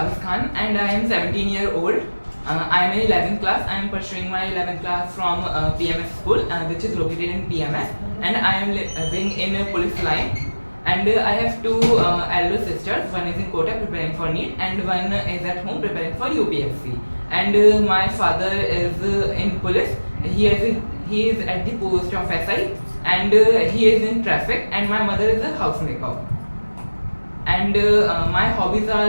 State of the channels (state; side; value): inverted; both; correlation -1.00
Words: Khan and I am 17 years old. I am in 11th class. I am pursuing my 11th class from PMS school which is located in PMS, and I am living in police line, and I have two elder sisters. One is in Kota preparing for NEET and one is at home preparing for UPSC. And my father is in police. He is at the post of SI, and he is in traffic, and my mother is a housemaker. And my hobbies